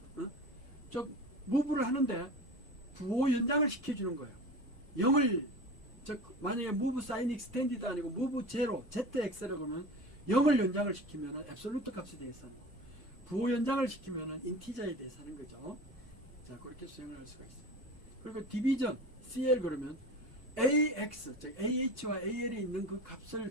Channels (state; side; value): normal; both; correlation 0.34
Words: 즉 무브를 하는데 부호 연장을 시켜주는 거예요. 0을 즉 만약에 move sign extended 아니고 move 0 ZX라고 하면 0을 연장을 시키면 앱솔루트 값에 대해서 하는 거, 부호 연장을 시키면 인티저에 대해서 하는 거죠. 자, 그렇게 수행을 할 수가 있어요. 그리고 디비전 CL 그러면 AX 즉 AH와 AL이 있는 그